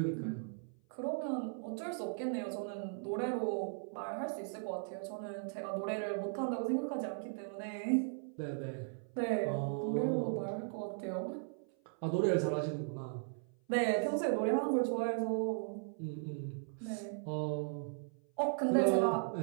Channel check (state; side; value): silent; left; 53 dB below the other